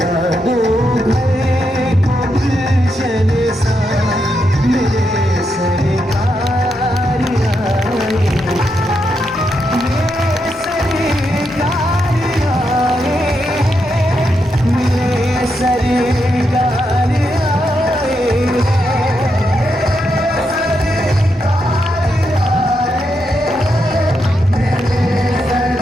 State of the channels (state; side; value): normal; both; correlation 0.82